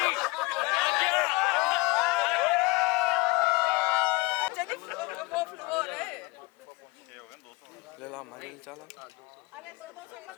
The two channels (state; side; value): quieter; right; 24.8 dB